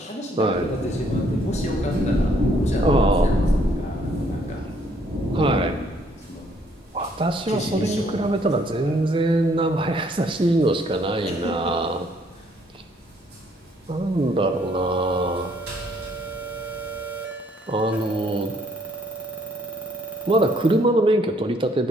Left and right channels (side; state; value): both; normal; correlation 0.66